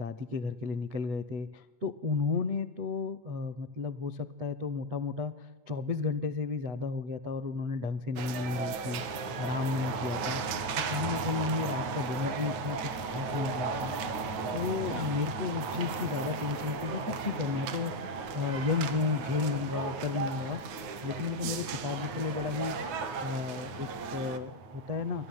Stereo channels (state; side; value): late; left; 9.3 ms